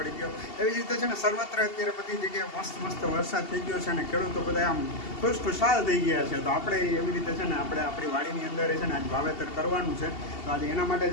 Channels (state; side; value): late; right; 2.7 ms